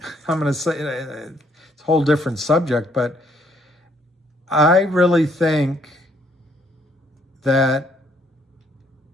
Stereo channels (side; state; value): both; normal; correlation 0.68